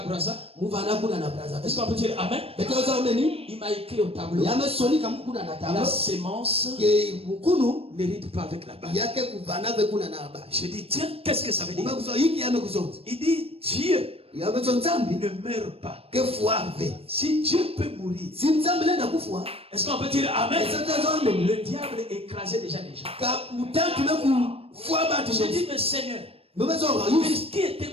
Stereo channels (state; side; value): late; left; 0.28 ms